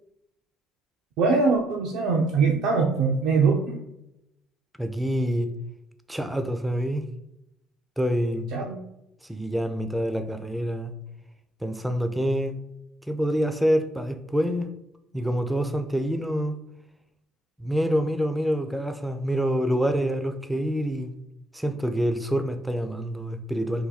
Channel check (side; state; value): both; normal; correlation 0.74